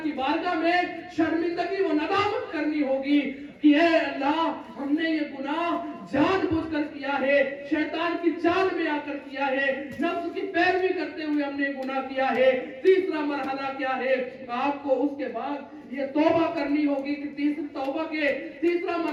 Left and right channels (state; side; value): identical; both; correlation 1.00